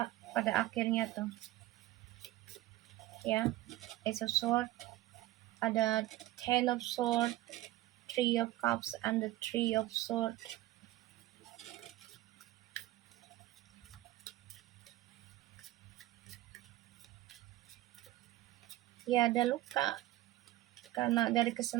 pada akhirnya tuh ya. Ace of Swords, ada Ten of Swords, Three of Cups, and the Three of Swords. Ya, ada luka karena dari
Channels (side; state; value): left; quieter; 16.4 dB